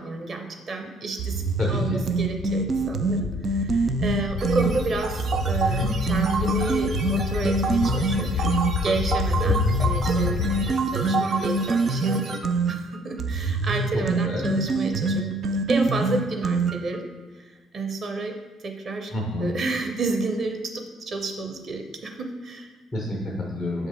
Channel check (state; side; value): normal; both; correlation 0.60